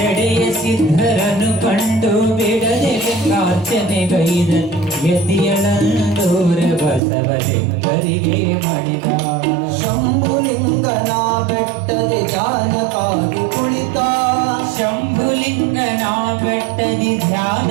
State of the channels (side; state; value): left; drops out; at 7.0 s